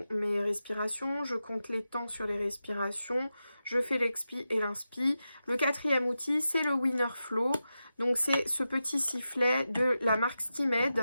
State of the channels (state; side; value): inverted; both; correlation -0.91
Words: mes respirations, je compte les temps sur les respirations, je fais l'expi et l'inspi. Le quatrième outil, c'est le Winner Flow. Donc, c'est ce petit sifflet de la marque